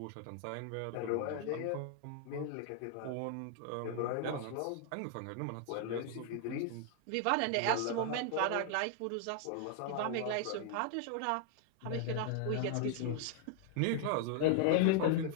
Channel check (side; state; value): both; different; correlation 0.00